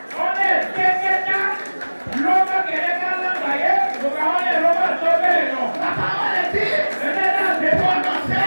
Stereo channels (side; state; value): both; inverted; correlation -1.00